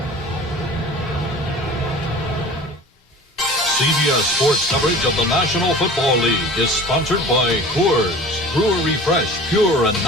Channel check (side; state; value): both; normal; correlation 0.41